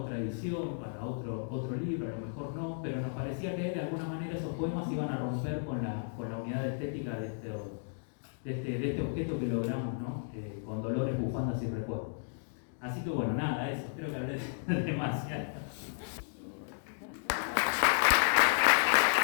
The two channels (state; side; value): silent; right; digital silence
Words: edición, para otro libro, a lo mejor no, pero nos parecía que de alguna manera esos poemas iban a romper con la unidad estética de este objeto que logramos, ¿no? Con dolores, bufandas y recuerdos. Así que bueno, nada, eso, creo que hablé demasiado.